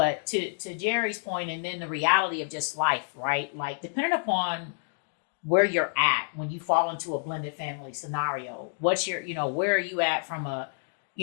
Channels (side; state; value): right; silent; digital silence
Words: to Jeri's point, and then the reality of just life, right? Like, depending upon where you're at when you fall into a blended family scenario, what's your, where are you at from a